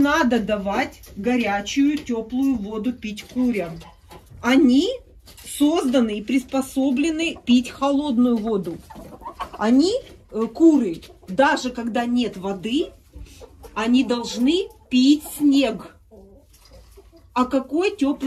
давать горячую, теплую воду пить курям. Они созданы и приспособлены пить холодную воду. Они, куры, даже когда нет воды, они должны пить снег. О какой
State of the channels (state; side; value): identical; both; correlation 1.00